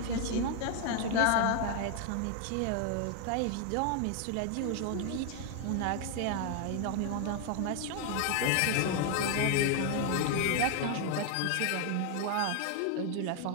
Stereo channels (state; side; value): different; both; correlation 0.00